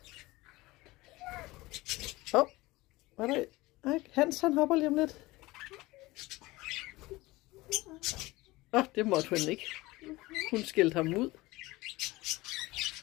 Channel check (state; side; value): quieter; right; 20.3 dB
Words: Hvad er det? Hans, han hopper lige om lidt. Det måtte hun ikke. Hun skældte ham ud.